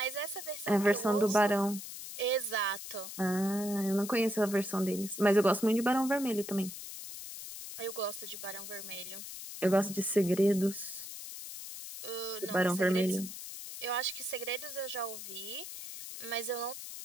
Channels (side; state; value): left; noise; hiss, 10 dB below the sound